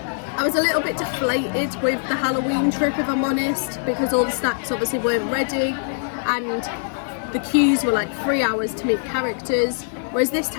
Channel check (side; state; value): right; silent; digital silence